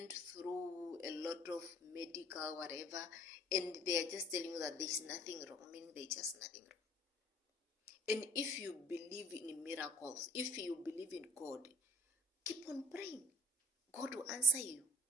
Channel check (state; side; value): normal; both; correlation 0.53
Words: through a lot of medical whatever, and they are just telling you that there's nothing wrong, meaning there's just nothing wrong. And if you believe in miracles, if you believe in God, keep on praying. God will answer you.